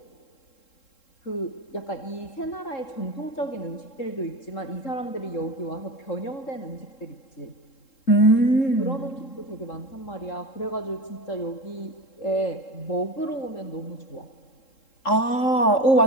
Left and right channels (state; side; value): late; right; 3.7 ms